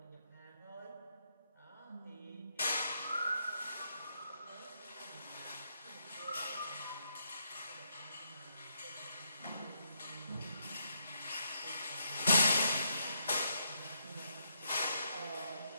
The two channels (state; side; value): inverted; both; correlation -0.78